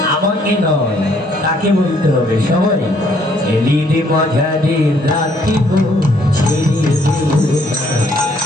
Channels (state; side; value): normal; both; correlation 0.66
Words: আমাকে নয়, তাকে বলতে হবে সবাই। এলিদে মাঝারে রাখিব, ছেড়ে দেব না।